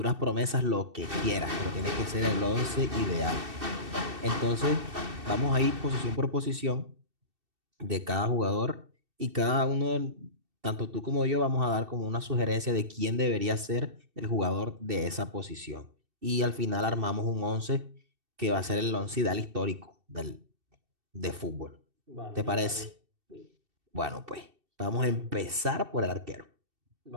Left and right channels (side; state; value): left; late; 2.7 ms